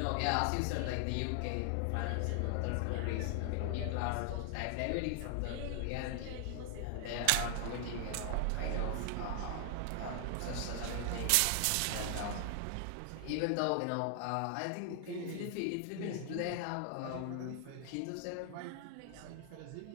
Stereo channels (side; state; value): both; different; correlation 0.00